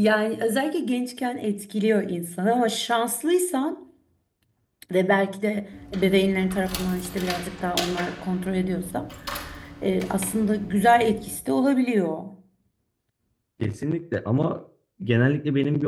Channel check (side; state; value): both; identical; correlation 1.00